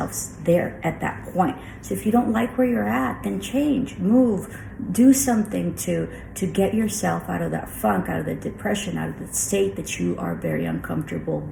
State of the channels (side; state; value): both; identical; correlation 1.00